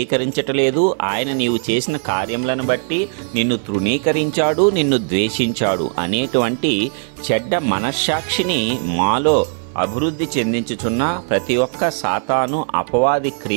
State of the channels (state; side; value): silent; left; 63 dB below the other